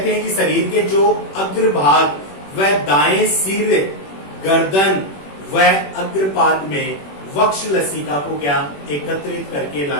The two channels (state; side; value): late; right; 21 ms